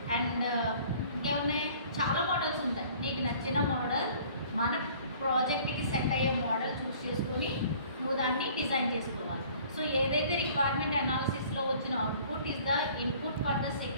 అండ్ ఇంకేమున్నాయి, చాలా మోడల్స్ ఉంటాయి. నీకు నచ్చిన మోడల్, మన ప్రాజెక్ట్కి సెట్ అయ్యే మోడల్ చూస్ చేసుకొని నువ్వు దాన్ని డిజైన్ చేసుకోవాలి. సో ఏదైతే రిక్వైర్మెంట్ అనాలిసిస్లో వచ్చిన output is the input for the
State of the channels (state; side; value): inverted; both; correlation -0.52